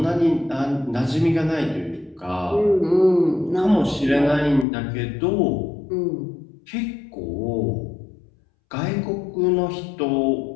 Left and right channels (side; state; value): right; drops out; at 4.7 s